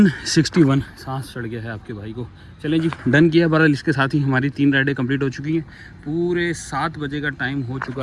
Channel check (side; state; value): both; identical; correlation 1.00